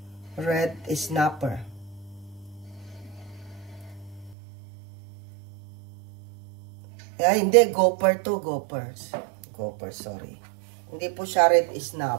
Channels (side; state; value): left; drops out; at 4.4 s